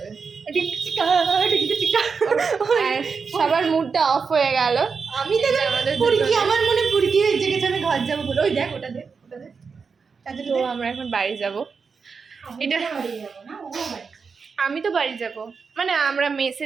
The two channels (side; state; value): left; quieter; 5.3 dB